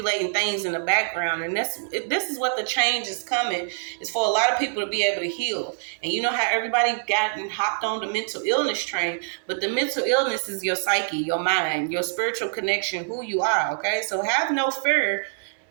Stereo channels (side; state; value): left; silent; 60 dB below the other